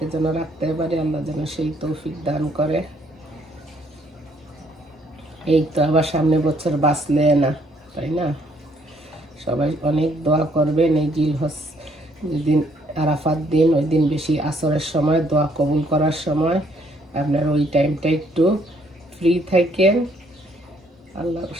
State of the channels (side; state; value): both; normal; correlation 0.67